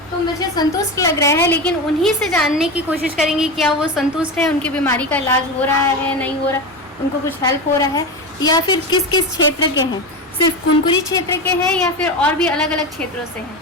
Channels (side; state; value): both; normal; correlation 0.21